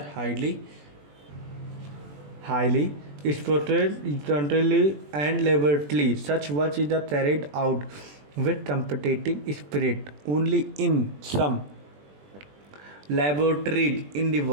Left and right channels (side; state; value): left; late; 20 ms